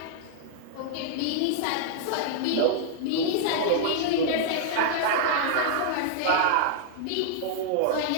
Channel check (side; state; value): both; different; correlation -0.01